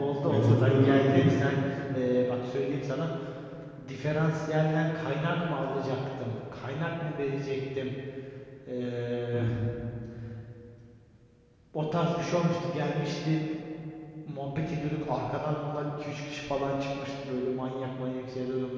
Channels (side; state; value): both; identical; correlation 1.00